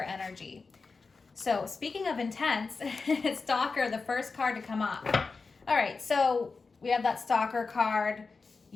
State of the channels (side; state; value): right; quieter; 4.4 dB